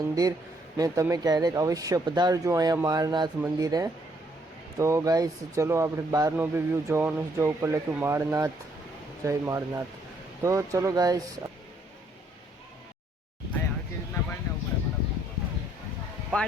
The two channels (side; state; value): both; normal; correlation 0.69